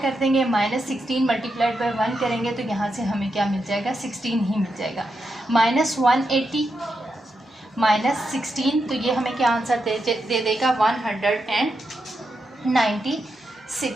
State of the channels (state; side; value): normal; both; correlation 0.85